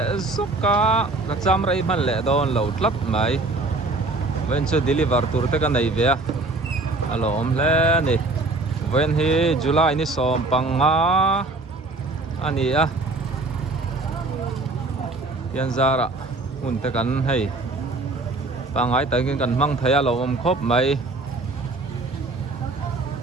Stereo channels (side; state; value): left; quieter; 3.2 dB